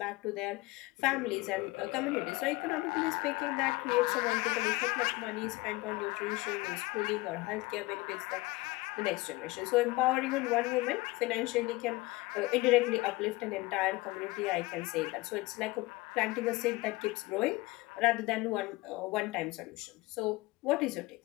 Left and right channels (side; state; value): right; quieter; 21.6 dB